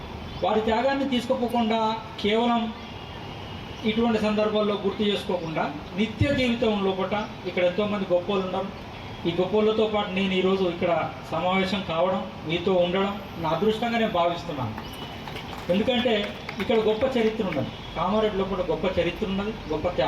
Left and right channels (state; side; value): identical; both; correlation 1.00